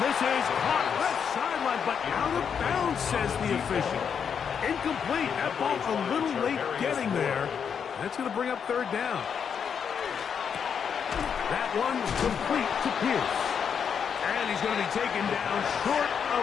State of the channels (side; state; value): right; quieter; 7.2 dB